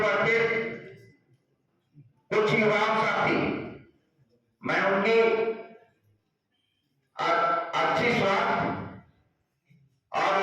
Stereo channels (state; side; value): identical; both; correlation 1.00